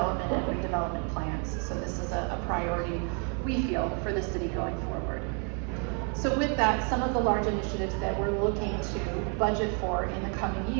and redevelopment plans. So this is a priority, we feel, for the city going forward. So with that, some of the large initiatives that we're looking to budget for in the coming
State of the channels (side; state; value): left; quieter; 38.8 dB